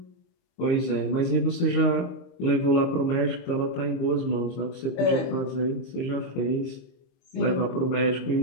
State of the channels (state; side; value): late; right; 23 ms